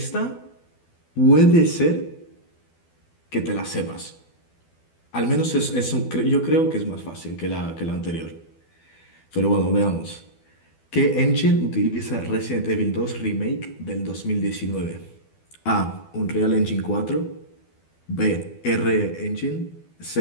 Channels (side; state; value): right; late; 12 ms